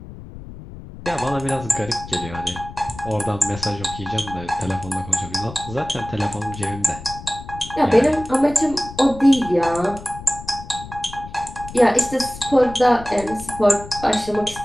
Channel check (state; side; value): noise; left; rumble, 14 dB below the sound